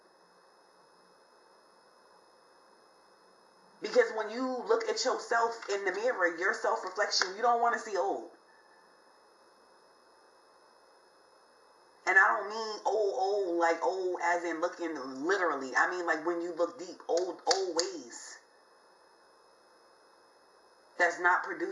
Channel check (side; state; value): both; identical; correlation 1.00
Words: Because when you look at yourself in the mirror, your self-reflection, you don't want to see old. And I don't mean old, like old as in looking literally. I mean like when you look deep, old ways. That's not